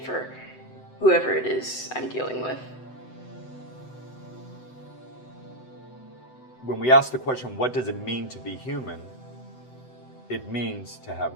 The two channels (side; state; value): right; late; 7.9 ms